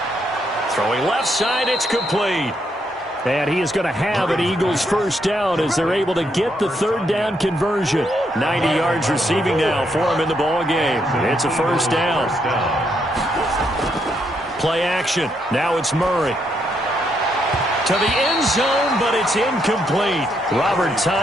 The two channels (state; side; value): normal; both; correlation 0.76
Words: Throwing left side, it's complete. And he is going to have an Eagles first down as they're able to get the 3rd down conversion. 90 yards receiving now for him in the ball game. It's a first down. Play action. Now it's Murray. To the end zone, but it's incomplete. Robert